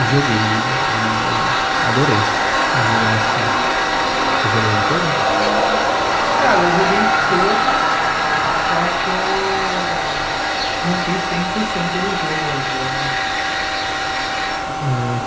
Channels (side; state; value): both; identical; correlation 1.00